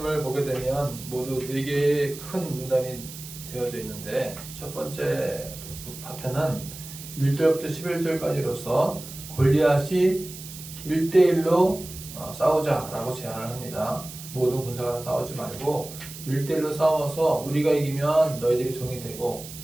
보게 되면 모두 4개의 큰 문단이 되어져 있는데, 첫 번째 파트는 1절부터 11절까지로서 골리앗이 1대1로 싸우자라고 제안을 합니다. 모든 군사가 싸우지 말고 1대1로 싸워서 우리가 이기면 너희들이 종이 되고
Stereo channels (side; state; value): right; noise; hiss, 13 dB below the sound